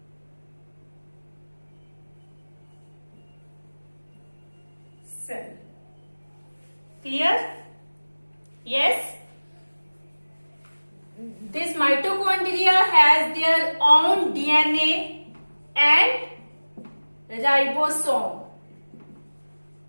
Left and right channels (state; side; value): inverted; both; correlation -1.00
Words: cell. Clear? Yes. This mitochondria has their own DNA and ribosome.